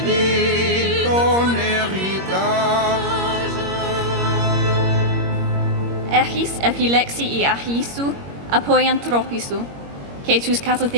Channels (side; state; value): left; late; 21 ms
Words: ton héritage. Echis epilexi I achisu, apoiantropisu, que tus